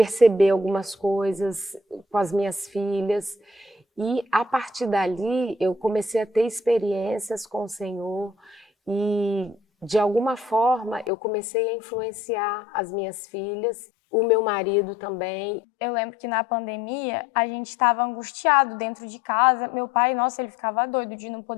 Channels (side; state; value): right; drops out; at 11.1 s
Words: algumas coisas com as minhas filhas. E a partir dali eu comecei a ter experiências com o Senhor e de alguma forma eu comecei a influenciar as minhas filhas, o meu marido também. Eu lembro que na pandemia a gente estava angustiado dentro de casa. Meu pai, nossa, ele ficava doido de não